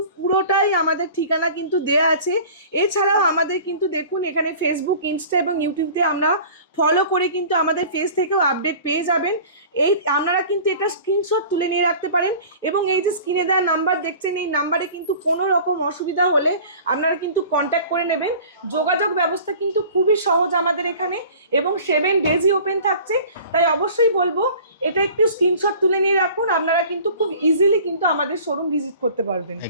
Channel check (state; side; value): inverted; both; correlation -0.43